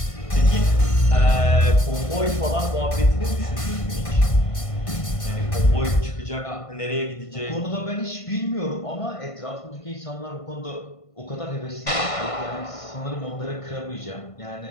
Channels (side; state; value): right; late; 1.5 ms